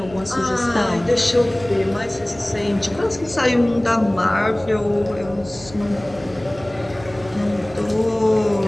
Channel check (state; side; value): noise; right; hum, 19 dB below the sound